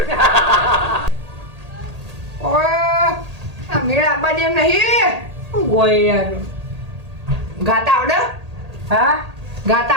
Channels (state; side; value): late; left; 1.8 ms